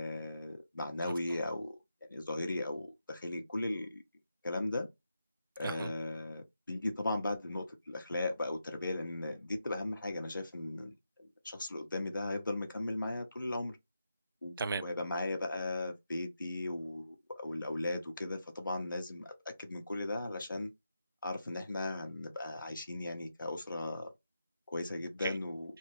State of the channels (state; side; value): inverted; both; correlation -0.86